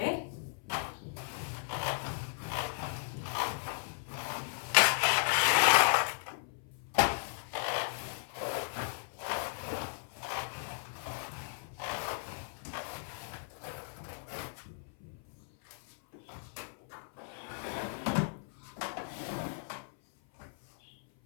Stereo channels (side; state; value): right; silent; 54 dB below the other